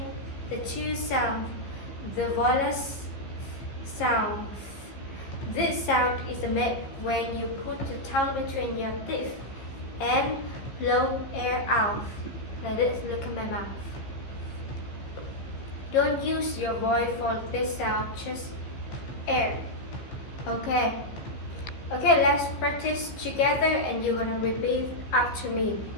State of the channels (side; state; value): right; late; 15 ms